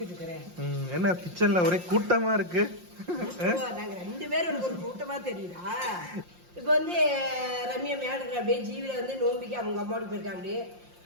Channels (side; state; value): left; late; 5.7 ms